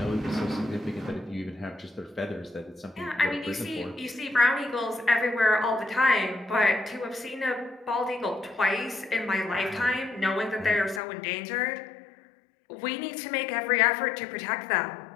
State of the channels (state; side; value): drops out; right; at 11.0 s